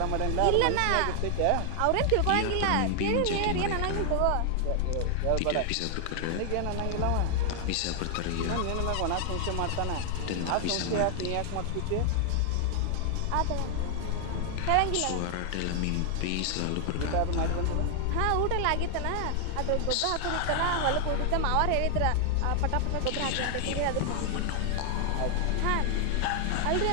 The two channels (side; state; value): both; different; correlation 0.00